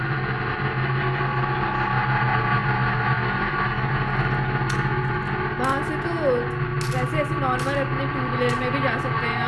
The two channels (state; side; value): identical; both; correlation 1.00